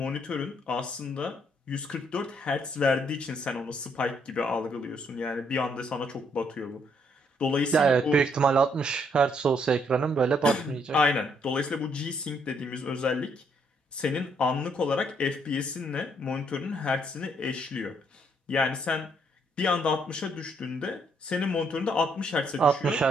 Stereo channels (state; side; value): normal; both; correlation 0.71